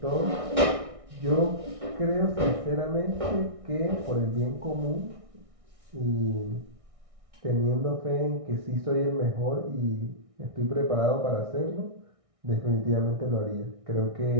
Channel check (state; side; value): late; left; 1.6 ms